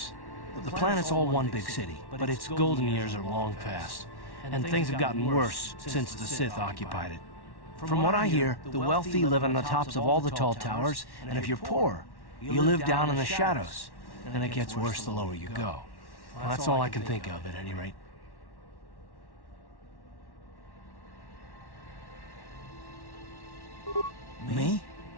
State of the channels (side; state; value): right; late; 1.1 ms